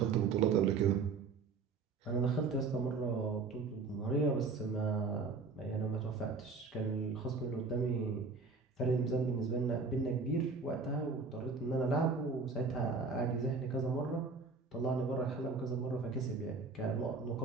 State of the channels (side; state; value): left; quieter; 4.5 dB